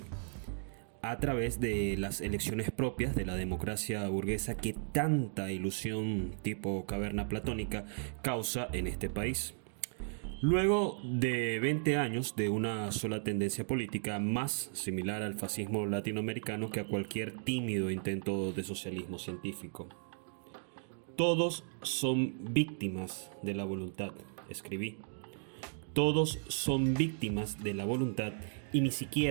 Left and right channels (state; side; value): silent; left; digital silence